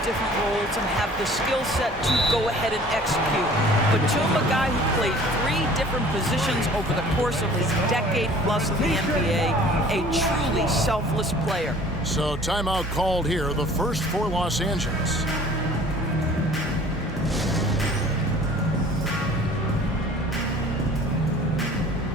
different roles and have the skill set to go ahead and execute. Batum, a guy who played 3 different positions over the course of his decade plus in the NBA, a truly selfless player. So timeout called here, the first for Los Angeles.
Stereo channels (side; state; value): both; normal; correlation 0.49